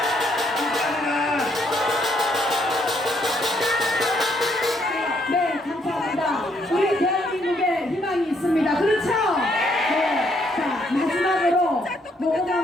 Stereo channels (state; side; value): normal; both; correlation 0.71